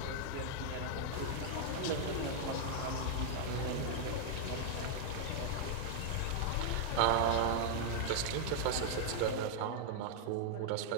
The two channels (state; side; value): different; both; correlation -0.01